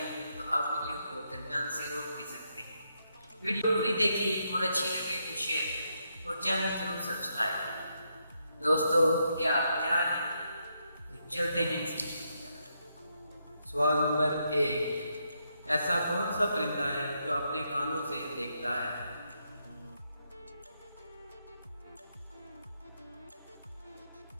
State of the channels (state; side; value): inverted; both; correlation -0.79